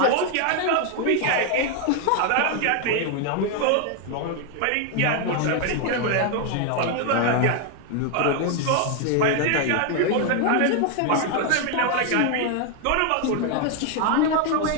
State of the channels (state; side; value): different; both; correlation 0.01